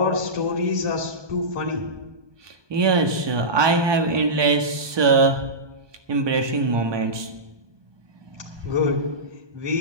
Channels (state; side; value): late; left; 1.2 ms